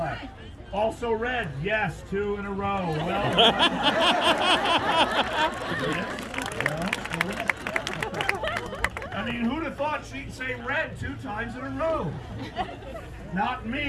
Also red. Yes, 2 in a row. Well done. I mean, who'd have thought she'd say red 2 times in a row? Not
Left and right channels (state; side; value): identical; both; correlation 1.00